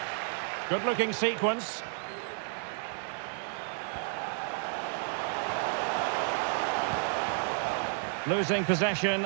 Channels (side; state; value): left; silent; 57 dB below the other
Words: Good-looking sequence. Losing possession